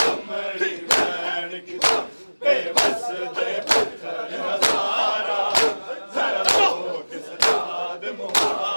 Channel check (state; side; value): inverted; both; correlation -1.00